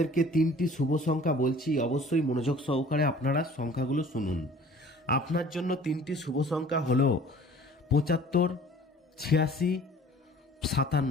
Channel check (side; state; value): both; normal; correlation 0.49